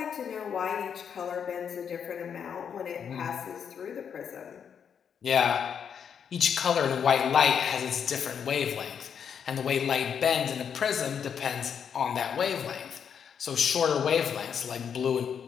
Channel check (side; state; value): right; quieter; 7.6 dB